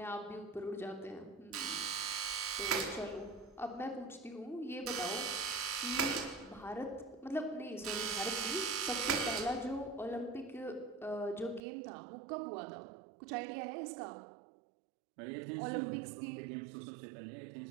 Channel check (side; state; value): left; drops out; at 11.6 s